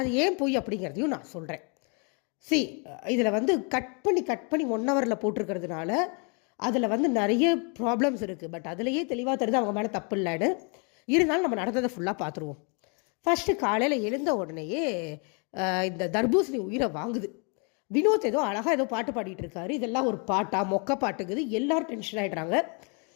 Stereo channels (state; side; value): quieter; right; 35.8 dB